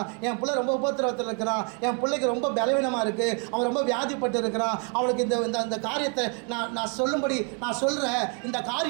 என் பிள்ளை ரொம்ப உபத்திரவத்தில் இருக்கிறான், என் பிள்ளைக்கு ரொம்ப பலவீனமாக இருக்குது, அவன் ரொம்ப வியாதிப்பட்டு இருக்கிறான், அவனுக்கு இந்த காரியத்தை நான் சொல்லும்படி நான் சொல்கிறேன், இந்த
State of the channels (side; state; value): left; quieter; 37.8 dB